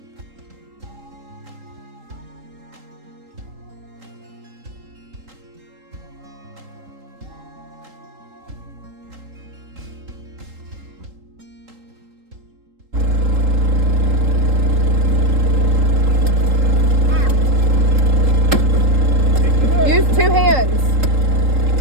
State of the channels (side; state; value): left; late; 3.8 ms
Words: Use two hands.